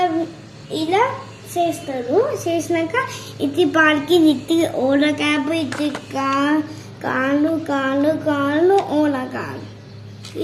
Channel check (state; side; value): identical; both; correlation 1.00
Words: ఇలా చేస్తారు. చేసినాక ఇది పాలకి ఇది ఓల క్యాప్, ఇది కాళ్ళు కాళ్ళు కాళ్ళు ఓల కాళ్ళు